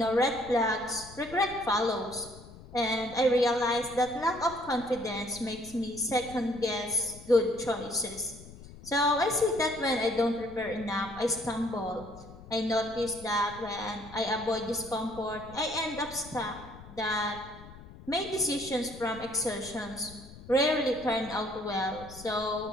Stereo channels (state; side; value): noise; left; rumble, 17 dB below the sound